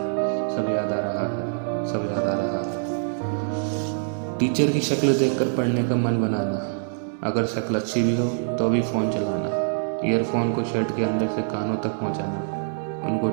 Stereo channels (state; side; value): silent; left; digital silence